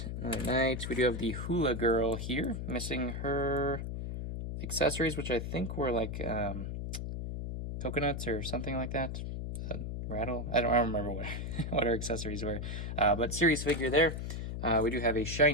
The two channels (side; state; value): left; noise; hum, 4 dB below the sound